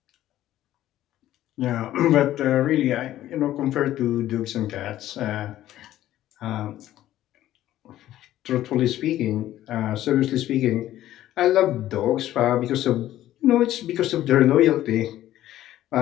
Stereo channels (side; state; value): right; quieter; 13.5 dB